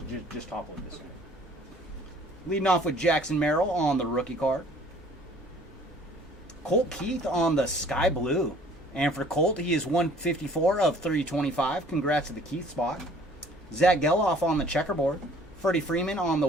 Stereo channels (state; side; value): normal; both; correlation 0.54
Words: just topple it this way. Leading off with Jackson Merrill on the rookie card. Colt Keith on the Sky Blue. And for Colt, he is 154 of 325. Congrats to the Keith spot. Zach Geloff on the checkerboard. Freddie Freeman on the